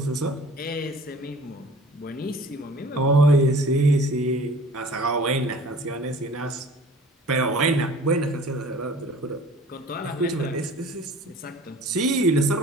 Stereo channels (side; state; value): both; normal; correlation 0.46